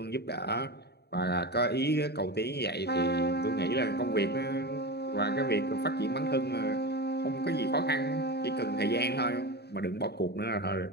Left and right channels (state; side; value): late; right; 0.48 ms